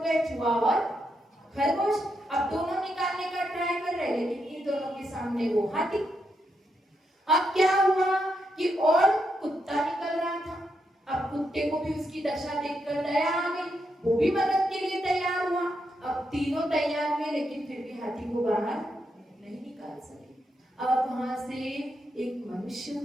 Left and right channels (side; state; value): both; normal; correlation 0.82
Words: गए, चूहा और खरगोश। अब दोनों निकालने का ट्राई कर रहे, लेकिन इन दोनों के सामने वो हाथी। अब क्या हुआ कि और कुत्ता निकल रहा था। अब कुत्ते को भी उसकी दशा देखकर दया आ गई, वो भी मदद के लिए तैयार हुआ। अब तीनों तैयार हुए, लेकिन फिर भी हाथी को बाहर नहीं निकाल सके। अब वहां से एक मनुष्य